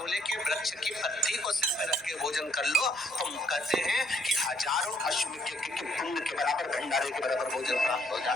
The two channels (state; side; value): noise; right; hum, 28 dB below the sound